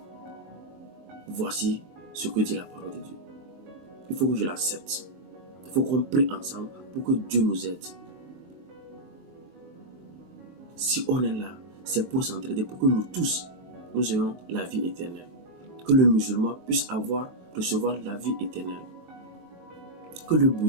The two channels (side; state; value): left; late; 19 ms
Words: voici ce que dit la parole de Dieu. Il faut que je l'accepte. Il faut qu'on prie ensemble pour que Dieu nous aide. Si on est là, c'est pour s'entraider, pour que nous tous, nous ayons la vie éternelle. Que le musulman puisse recevoir la vie éternelle. Que le